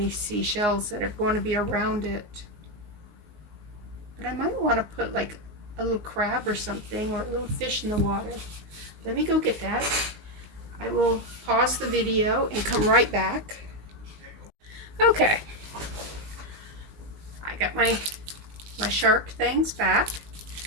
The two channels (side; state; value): left; late; 19 ms